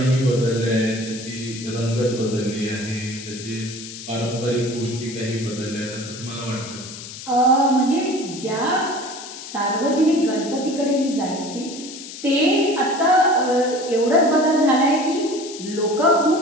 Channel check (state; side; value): noise; left; hiss, 12 dB below the sound